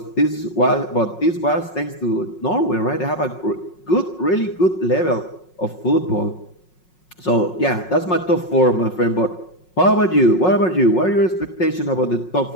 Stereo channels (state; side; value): late; right; 5.5 ms